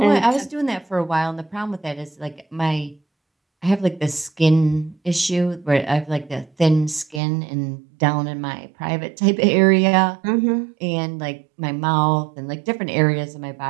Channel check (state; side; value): drops out; left; at 7.2 s